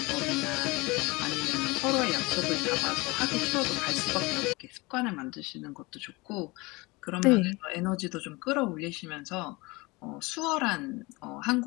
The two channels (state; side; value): quieter; right; 24.1 dB